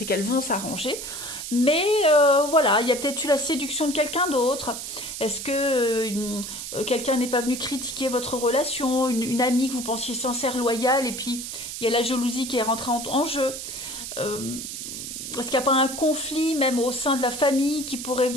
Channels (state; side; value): noise; right; hiss, 7 dB below the sound